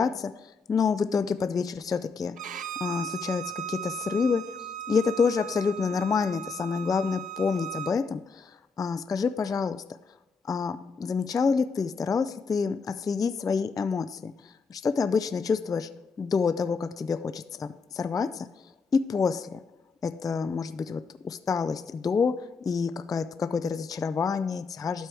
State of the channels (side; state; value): right; quieter; 4.8 dB